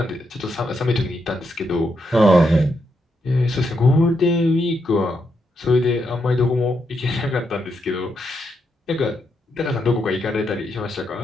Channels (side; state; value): both; normal; correlation 0.81